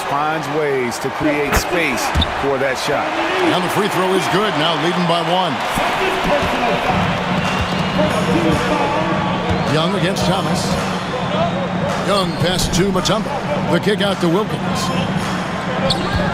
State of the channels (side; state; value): both; identical; correlation 1.00